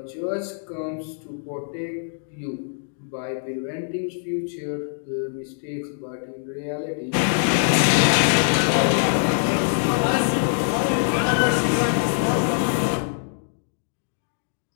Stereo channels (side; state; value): right; silent; digital silence